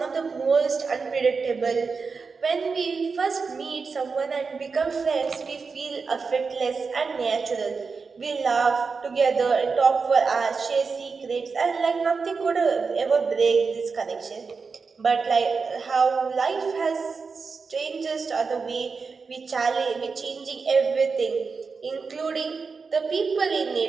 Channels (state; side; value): quieter; left; 4.9 dB